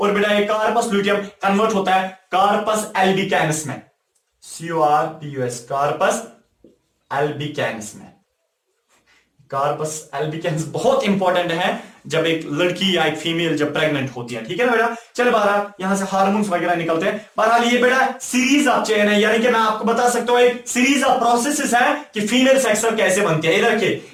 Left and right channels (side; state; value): both; identical; correlation 1.00